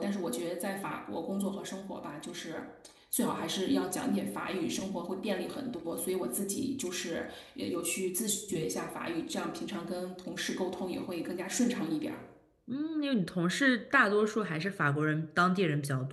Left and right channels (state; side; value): identical; both; correlation 1.00